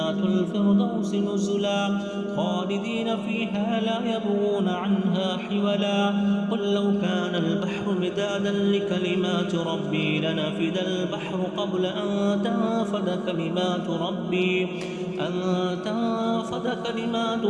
الفردوس نزلا خالدين فيها لا يبغون عنها حولا قل لو كان البحر مدادا لكلمات ربي لنفد البحر قبل أن تنفد كلمات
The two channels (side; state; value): both; identical; correlation 1.00